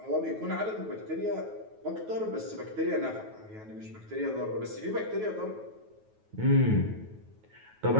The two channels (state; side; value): late; left; 9.3 ms